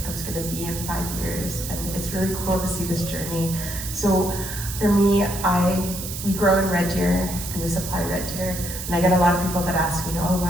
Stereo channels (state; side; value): noise; right; hiss, 8 dB below the sound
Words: I was going to be in 5 years, and it's really cool to see this journey. So for me, we grow in Red Deer and we supply Red Deer, and I get a lot of people that ask me, oh,